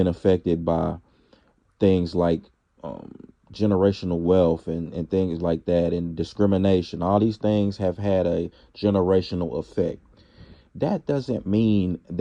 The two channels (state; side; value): identical; both; correlation 1.00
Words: affected by things like um, generational wealth and things like that, and discrimination. All these things have had a generational effect. That doesn't mean